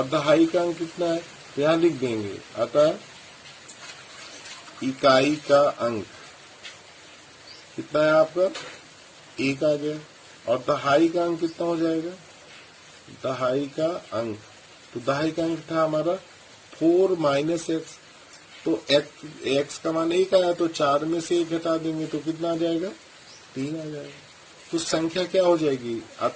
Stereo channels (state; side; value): identical; both; correlation 1.00